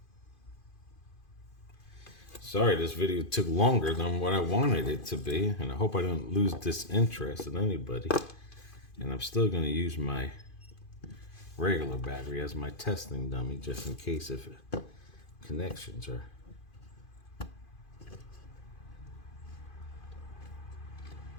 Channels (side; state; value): right; late; 2.5 ms